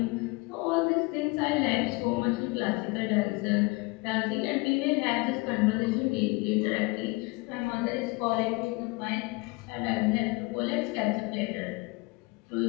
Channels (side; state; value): right; quieter; 26.3 dB